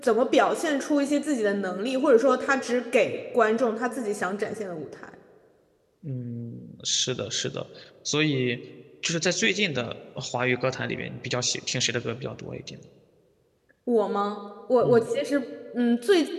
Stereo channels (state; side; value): identical; both; correlation 1.00